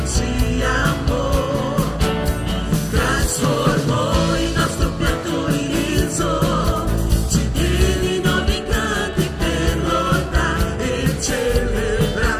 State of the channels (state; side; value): identical; both; correlation 1.00